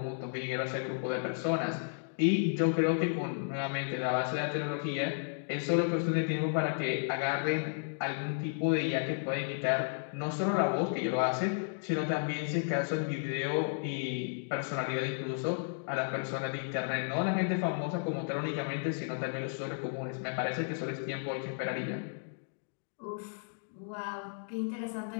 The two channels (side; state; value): right; silent; digital silence